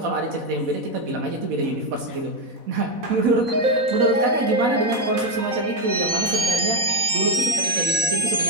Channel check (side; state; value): left; late; 4.1 ms